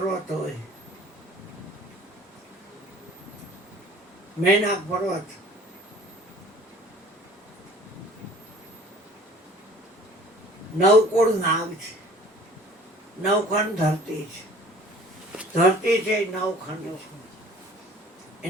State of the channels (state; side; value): normal; both; correlation 0.49